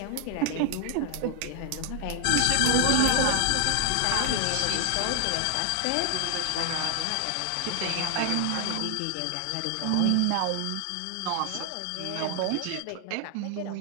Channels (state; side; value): different; both; correlation 0.00